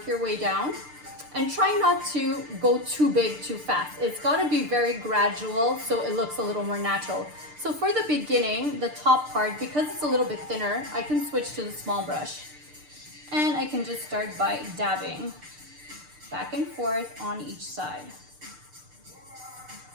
your way down, and try not to go too big too fast. It's gotta be very gradual so it looks a little more natural. So for the beginning, the top part, because it's a little bit thinner, I can switch to the small brush. And I can just start by dabbing back and forth on each side.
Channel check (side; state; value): left; late; 6.7 ms